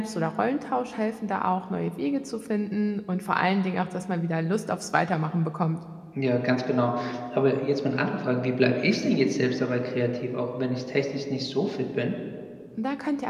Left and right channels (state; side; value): identical; both; correlation 1.00